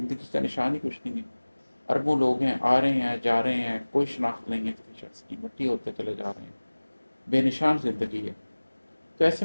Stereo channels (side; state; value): both; inverted; correlation -1.00